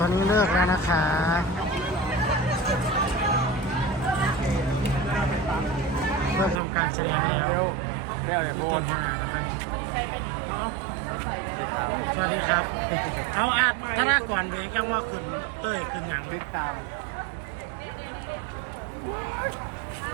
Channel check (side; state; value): left; drops out; at 6.6 s